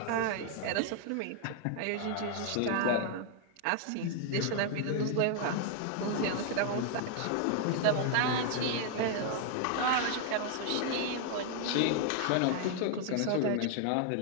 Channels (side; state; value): both; different; correlation 0.00